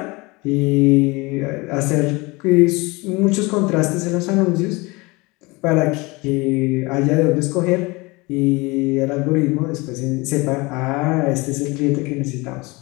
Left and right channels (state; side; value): quieter; right; 24.7 dB